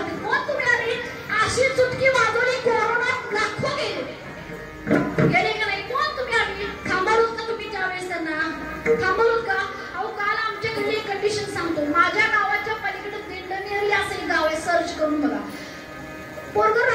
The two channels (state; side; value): identical; both; correlation 1.00